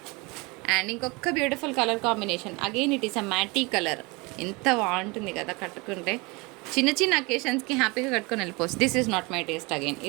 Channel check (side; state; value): left; quieter; 26.5 dB